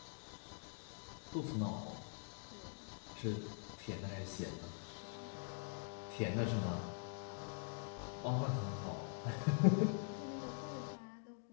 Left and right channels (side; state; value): right; silent; digital silence